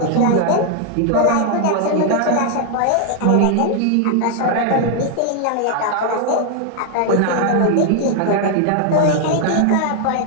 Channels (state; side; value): different; both; correlation 0.00